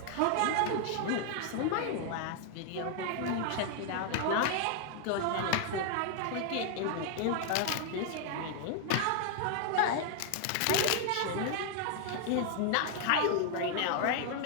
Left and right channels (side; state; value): both; different; correlation 0.00